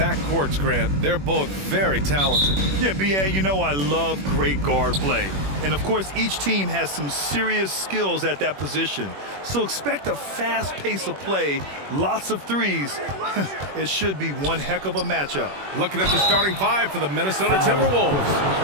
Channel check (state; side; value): late; left; 21 ms